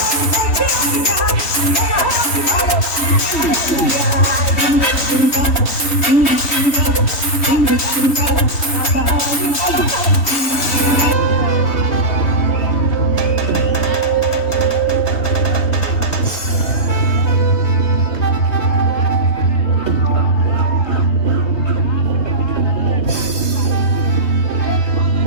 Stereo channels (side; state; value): right; late; 3.5 ms